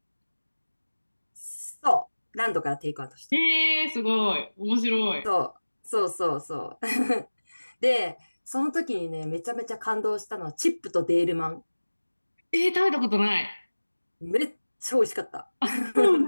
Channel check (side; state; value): both; inverted; correlation -1.00